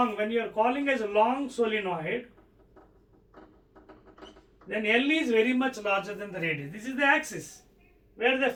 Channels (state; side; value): identical; both; correlation 1.00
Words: when you are calling as a long solenoid, then L is very much larger than the radius. This is the axis where the